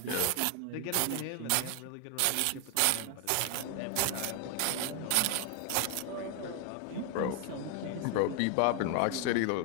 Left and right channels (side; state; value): both; different; correlation 0.00